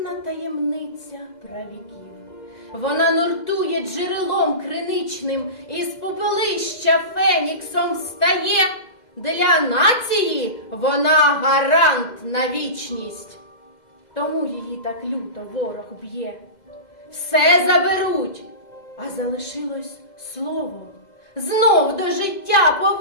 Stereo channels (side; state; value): right; late; 2.0 ms